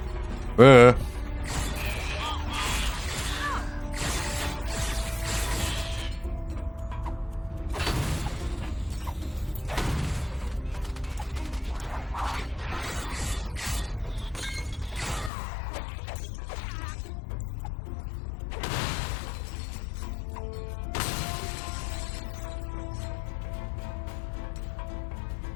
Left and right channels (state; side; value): drops out; right; at 15.3 s